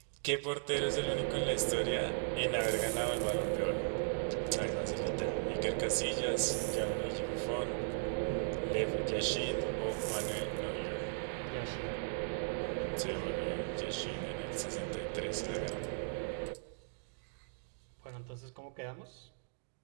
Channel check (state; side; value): silent; left; digital silence